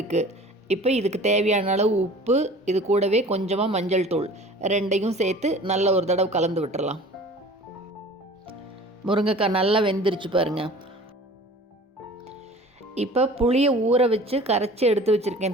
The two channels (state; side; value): normal; both; correlation 0.44